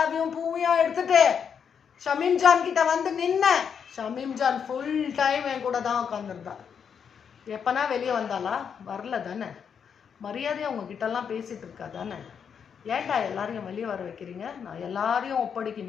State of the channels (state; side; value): quieter; right; 7.2 dB